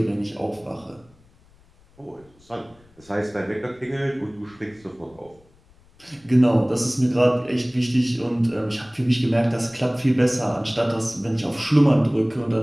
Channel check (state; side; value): noise; left; rumble, 29 dB below the sound